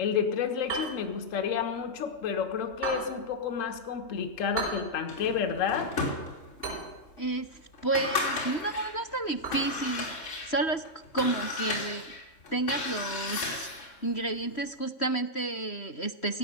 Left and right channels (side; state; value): right; late; 3.6 ms